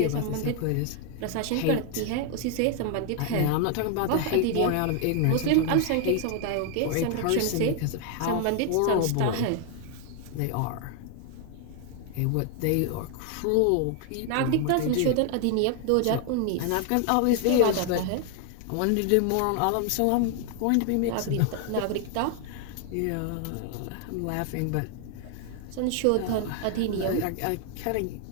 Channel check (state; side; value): different; both; correlation 0.00